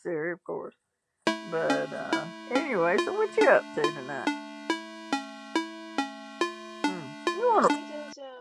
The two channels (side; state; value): both; identical; correlation 1.00